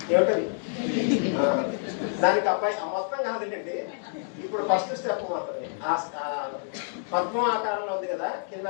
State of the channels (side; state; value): right; silent; digital silence